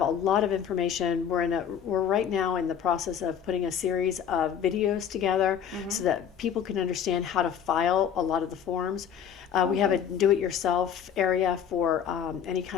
a lot of information. We're right now in the process of putting a series of videos together so that people can understand how to file a lot of the forms. We have a do-it-yourself area for any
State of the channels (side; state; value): right; quieter; 8.4 dB